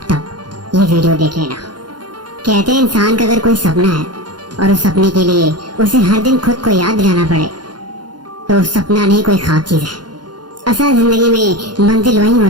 तब ये वीडियो देख लेना। कहते हैं इंसान का अगर कोई सपना है और उस सपने के लिए उसे हर दिन खुद को याद दिलाना पड़े तो सपना नहीं कोई ख्वाब चीज है। असल जिंदगी में मंजिल वही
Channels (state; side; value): late; left; 0.71 ms